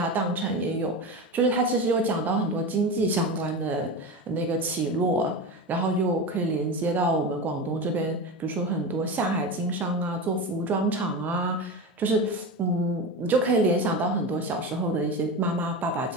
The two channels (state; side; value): normal; both; correlation 0.24